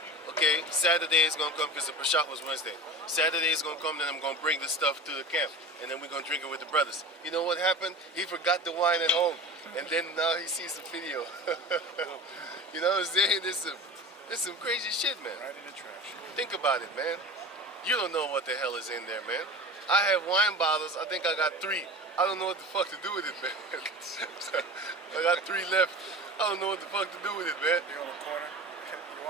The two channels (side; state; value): both; normal; correlation 0.33